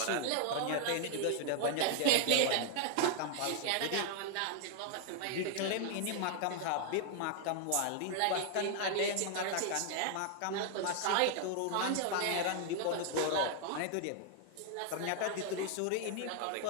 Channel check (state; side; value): different; both; correlation 0.00